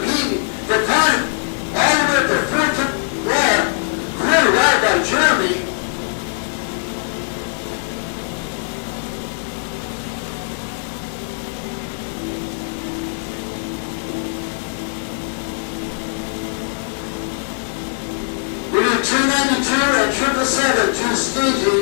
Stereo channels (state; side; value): silent; right; 64 dB below the other